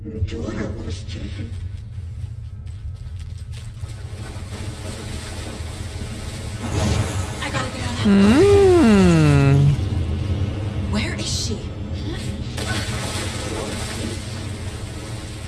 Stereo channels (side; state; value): both; identical; correlation 1.00